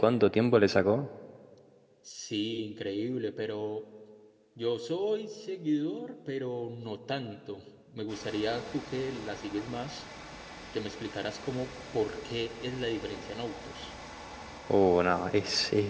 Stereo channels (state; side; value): identical; both; correlation 1.00